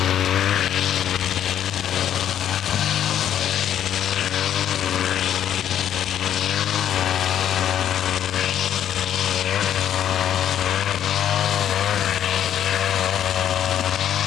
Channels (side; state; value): right; quieter; 10.2 dB